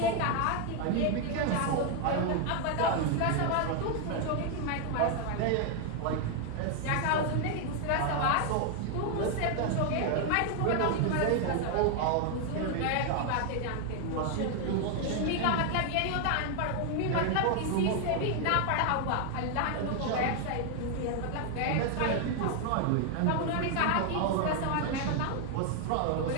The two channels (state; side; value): different; both; correlation 0.01